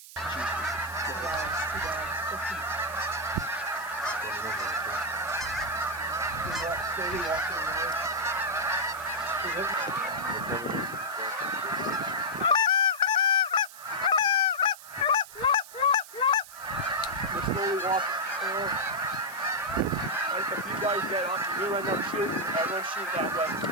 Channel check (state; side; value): noise; right; hiss, 17 dB below the sound